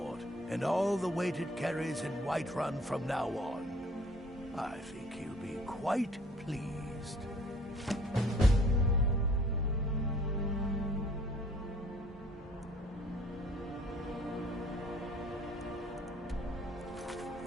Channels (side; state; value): both; normal; correlation 0.55